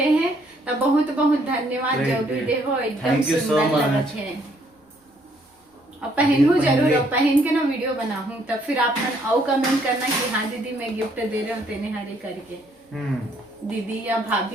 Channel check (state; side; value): normal; both; correlation 0.67